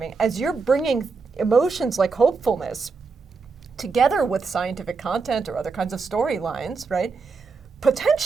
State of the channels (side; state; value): left; quieter; 4.7 dB